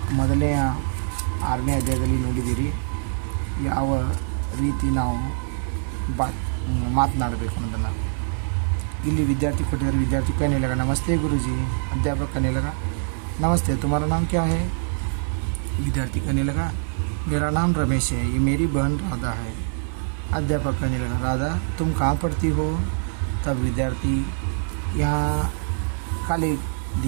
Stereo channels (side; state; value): left; silent; 62 dB below the other